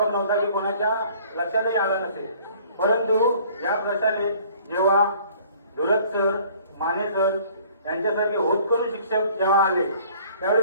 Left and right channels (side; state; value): both; inverted; correlation -0.54